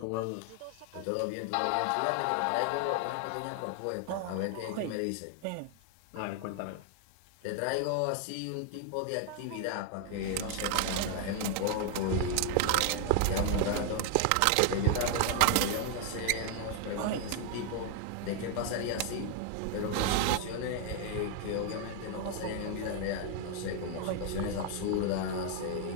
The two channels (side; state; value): both; different; correlation 0.00